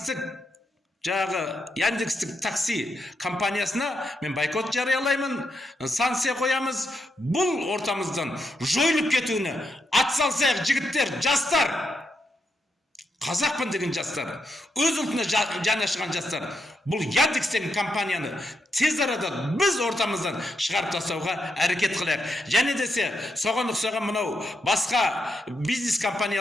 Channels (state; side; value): normal; both; correlation 0.82